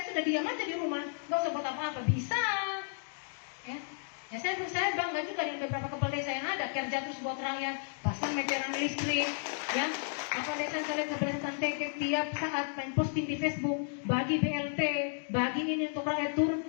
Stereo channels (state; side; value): silent; right; digital silence